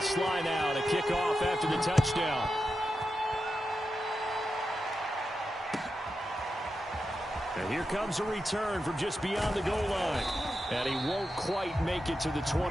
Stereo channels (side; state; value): both; normal; correlation 0.89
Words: now to kick off after the touchdown. And here comes a return from just beyond the goal line. And he won't quite make it to the